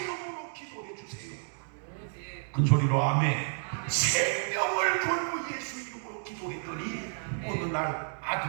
기도해 주세요. 큰 소리로 아멘. 생명을 걸고 예수 이름으로 기도했더니 어느 날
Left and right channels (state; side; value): silent; left; 57 dB below the other